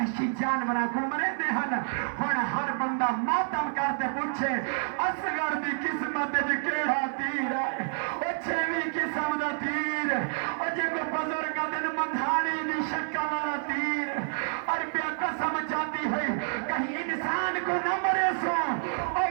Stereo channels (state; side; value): silent; left; digital silence